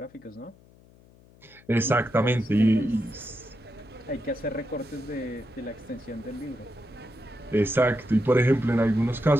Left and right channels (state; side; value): noise; left; hum, 26 dB below the sound